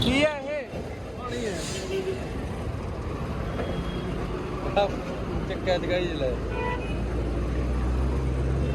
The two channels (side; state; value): both; identical; correlation 1.00